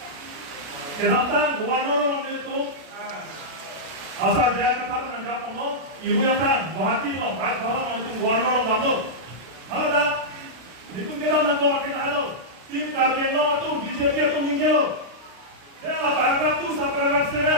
kenapa gubernur itu asal dia kata menangkap lo, ibu yang kan, Guwahati lo, baik bahwa itu gubernur lo, mana dah, itu kita menangkap kita lo, tim kerja lo itu BJP itu minggu lo, dia lah berangkat tu sekarang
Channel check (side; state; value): left; late; 32 ms